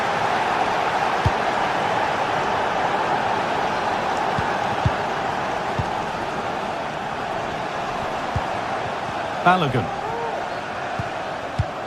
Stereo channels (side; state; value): both; identical; correlation 1.00